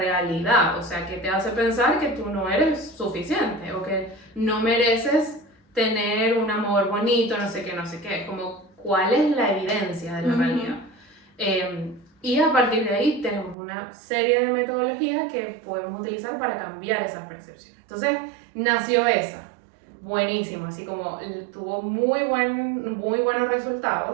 o sea, que te hace pensar que tú no eres suficiente o que no mereces tener un amor bonito, no sé qué, como cuál es la evidencia de la realidad. Y a partir de ahí tenemos una serie de metodologías que podemos utilizar para cambiar esas percepciones. Entonces nació esa, buenísimo, así como tuvo muy buenos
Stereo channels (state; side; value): drops out; left; at 13.6 s